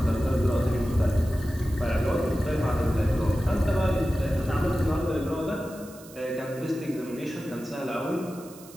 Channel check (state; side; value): noise; right; hiss, 20 dB below the sound